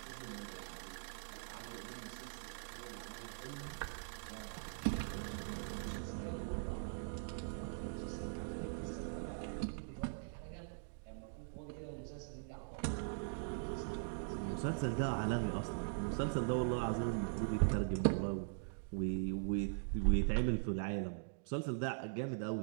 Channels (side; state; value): left; silent; digital silence